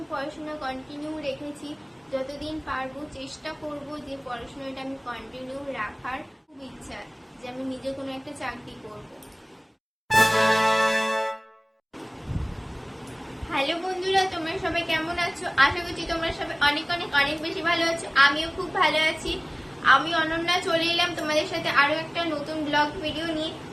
পড়াশোনা কন্টিনিউ রেখেছি, যতদিন পারবো চেষ্টা করব যে পড়াশোনাটা আমি কন্টিনিউ রাখার। খুব ইচ্ছা যে আমি নিজে কোনো একটা চাকরি করব। হ্যালো বন্ধুরা, তোমরা সবাই কেমন আছো? আশা করছি তোমরা সবাই অনেক অনেক অনেক বেশি ভালো আছো। আমিও খুব ভালো আছি। আমি অনন্যা চলে এলাম তোমাদের সাথে আরো একটা নতুন ব্লগ ভিডিও নিয়ে।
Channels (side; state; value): both; identical; correlation 1.00